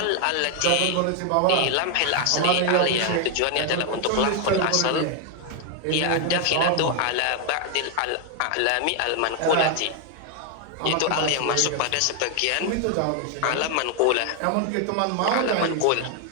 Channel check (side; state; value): both; different; correlation 0.00